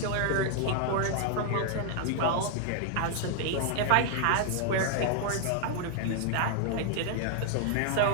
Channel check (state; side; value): different; both; correlation 0.00